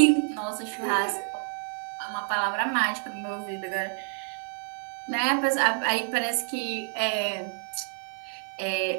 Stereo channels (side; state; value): left; silent; 59 dB below the other